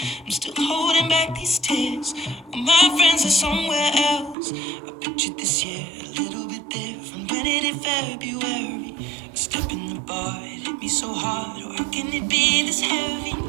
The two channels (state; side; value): drops out; left; at 4.4 s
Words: I'm still holding back these tears. All my friends are somewhere else. I pictured this year a little bit different. When it hit February, a step in the bar, it hit me so hard. Or how can it be this heavy?